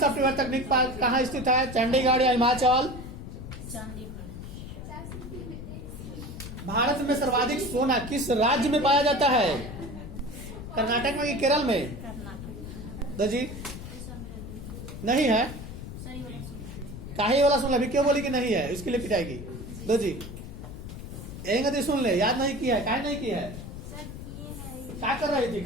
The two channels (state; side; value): noise; left; rumble, 10 dB below the sound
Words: तकनीक पार्क कहाँ स्थित है? चंडीगढ़ या हिमाचल? भारत में सर्वाधिक सोना किस राज्य में पाया जाता है? कर्नाटक में कि केरल में? दो जी नहीं है। काहे वाला सुन अभी क्यों बोली कि नहीं है? इसके लिए पिटाएगी। दो जी एक सुन ले, याद नहीं किया है? काहे नहीं किया है? क्या कर रही थी?